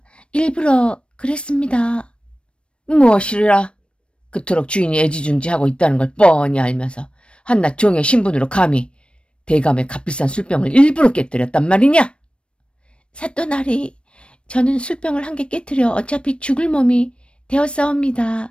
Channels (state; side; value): late; right; 0.058 ms